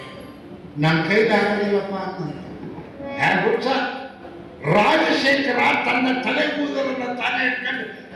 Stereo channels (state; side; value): identical; both; correlation 1.00